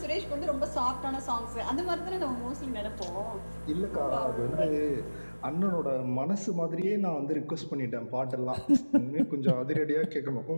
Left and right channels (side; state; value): both; inverted; correlation -1.00